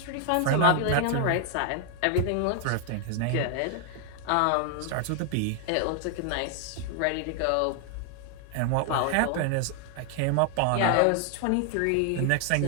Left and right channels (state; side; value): different; both; correlation 0.00